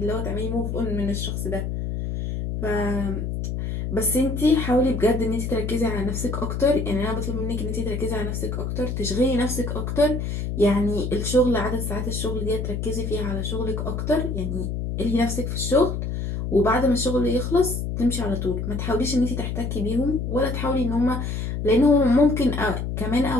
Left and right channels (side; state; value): left; noise; hum, 3 dB below the sound